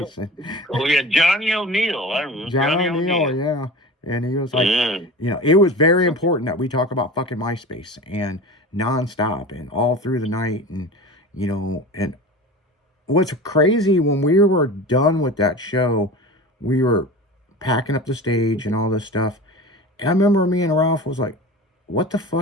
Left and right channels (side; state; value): both; normal; correlation 0.33